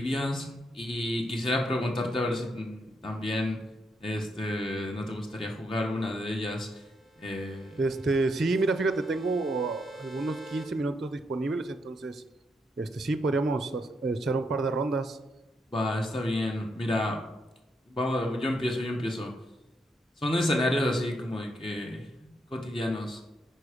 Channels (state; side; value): normal; both; correlation 0.79